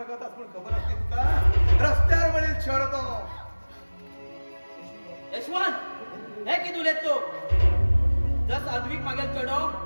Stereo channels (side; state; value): both; inverted; correlation -1.00